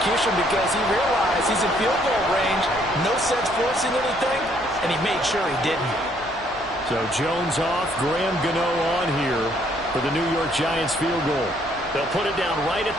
because he realized he's in field goal range. No sense forcing anything, and he made sure he didn't. So Jones off, Graham Gano on here for the New York Giants field goal. They'll put it down right at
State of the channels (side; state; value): both; normal; correlation 0.66